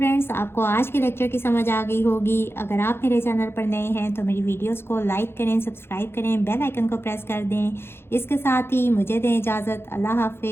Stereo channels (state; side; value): late; right; 0.11 ms